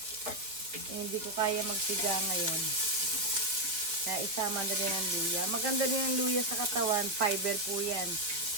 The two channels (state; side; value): late; left; 4.5 ms